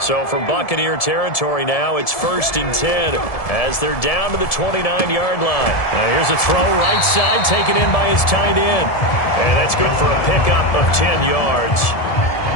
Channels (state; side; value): late; right; 1.7 ms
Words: from Buccaneer territory now, it's 1st and 10 as they're down to the 29-yard line. Now here's a throw right side, taken in by his tight end. And that's good for a pickup of 10 yards.